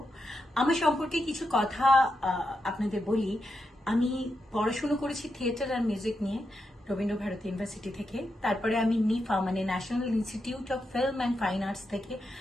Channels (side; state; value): both; normal; correlation 0.85